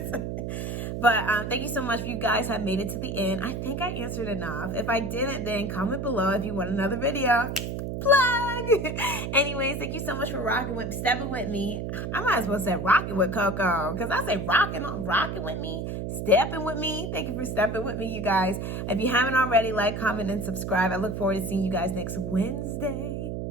But thank you so much. You guys have made it to the end. I think I answered enough. If I didn't, then comment below if you want another video. Plug! Anyways, thank you so much for stepping with me. I might as well say rocking with Coco, because I say rocking with me, stepping with me. Thank you for stepping with me, you guys. If you haven't already, like, comment, and subscribe. I look forward to seeing you guys next Wednesday.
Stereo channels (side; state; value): right; noise; hum, 4 dB below the sound